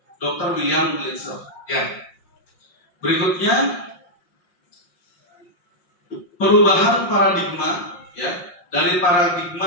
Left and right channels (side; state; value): right; late; 5.6 ms